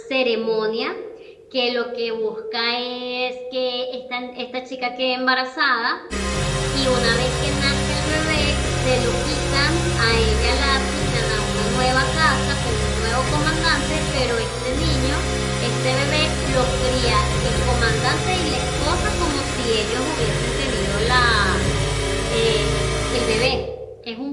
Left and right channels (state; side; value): identical; both; correlation 1.00